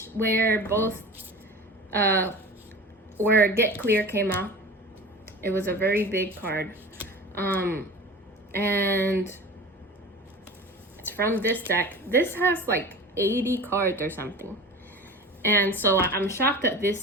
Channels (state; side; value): normal; both; correlation 0.35